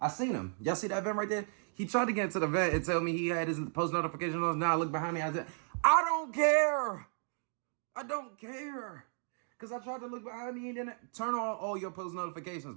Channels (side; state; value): left; silent; 55 dB below the other